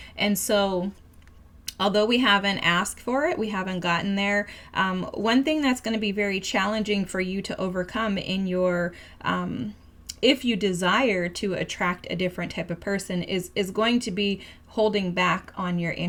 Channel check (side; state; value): both; identical; correlation 1.00